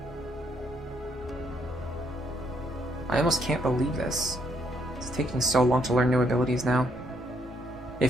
I almost can't believe this. It's taking so long to learn new abilities now. It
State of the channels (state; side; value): normal; both; correlation 0.72